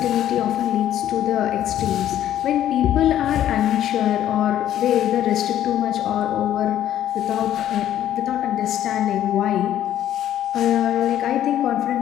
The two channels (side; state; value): right; quieter; 11.6 dB